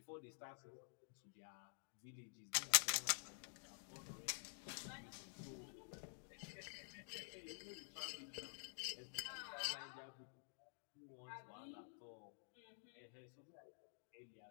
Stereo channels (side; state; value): right; silent; digital silence